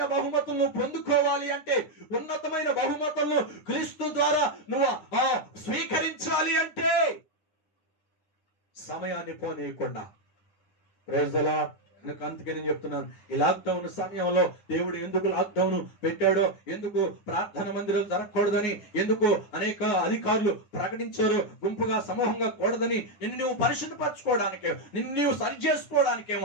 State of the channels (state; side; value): late; right; 9.9 ms